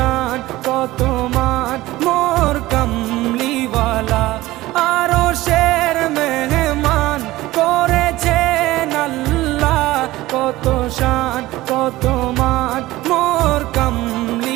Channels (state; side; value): quieter; left; 17.6 dB